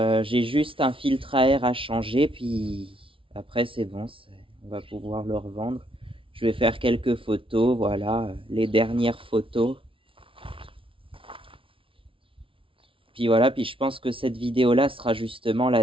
juste un filtre à air à changer, puis après c'est bon, on va pouvoir le revendre. Je vais faire quelques photos, voilà, les dernières photos. Puis voilà, puis je pense que cette vidéo-là sera justement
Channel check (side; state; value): left; late; 0.25 ms